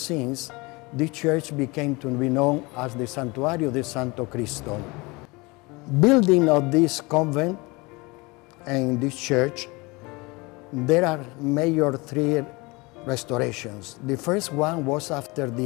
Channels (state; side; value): quieter; right; 25.1 dB